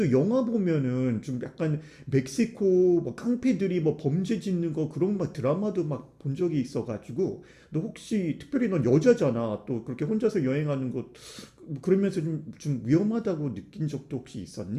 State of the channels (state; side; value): identical; both; correlation 1.00